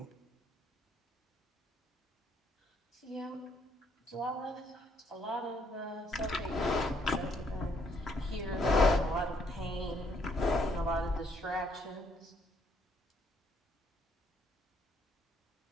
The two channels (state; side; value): normal; both; correlation 0.69